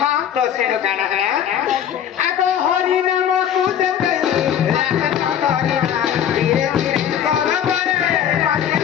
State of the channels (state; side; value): quieter; right; 9.5 dB